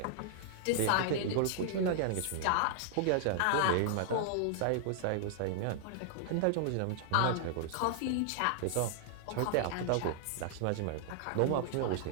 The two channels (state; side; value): different; both; correlation -0.01